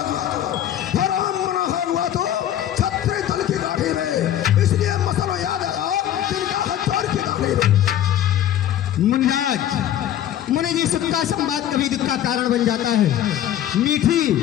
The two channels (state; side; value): quieter; right; 11.4 dB